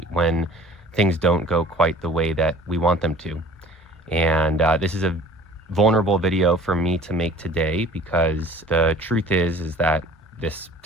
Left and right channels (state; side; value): normal; both; correlation 0.48